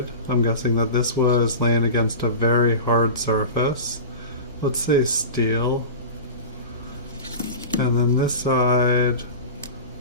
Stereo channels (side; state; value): both; inverted; correlation -0.31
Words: I'm guessing that this was laying against a very hard surface. Let's say steel. And then this side